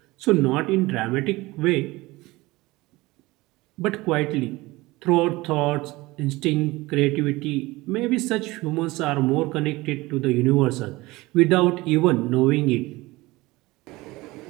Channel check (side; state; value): left; quieter; 20.6 dB